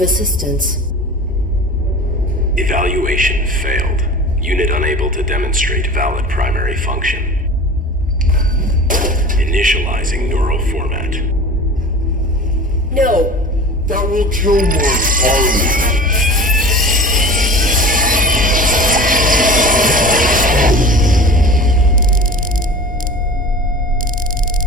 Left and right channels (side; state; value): both; normal; correlation 0.37